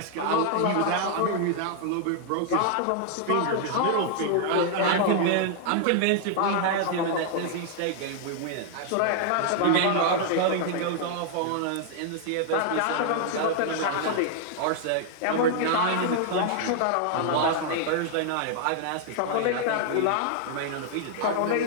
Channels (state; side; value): different; both; correlation 0.00